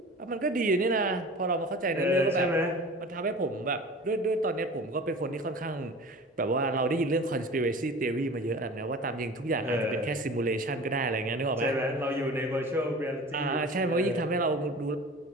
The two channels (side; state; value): both; normal; correlation 0.39